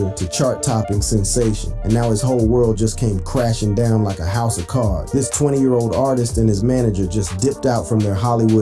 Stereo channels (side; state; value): both; identical; correlation 1.00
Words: to chart-topping sensation, and now his whole world just came crashing down like a house of cards. This 20-year-old artist and his manager just dipped out from their